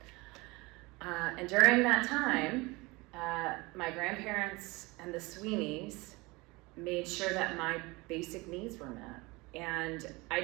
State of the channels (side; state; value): left; quieter; 23.9 dB